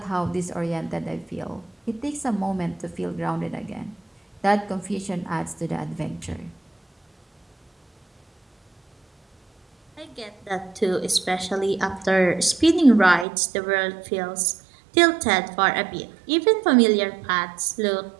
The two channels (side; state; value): left; drops out; at 13.2 s